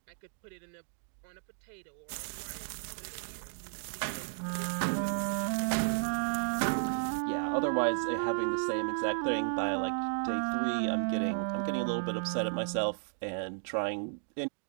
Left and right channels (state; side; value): silent; left; digital silence